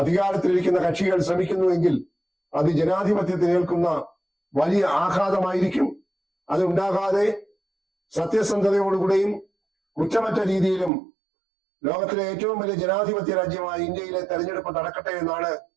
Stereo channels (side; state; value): left; drops out; at 10.9 s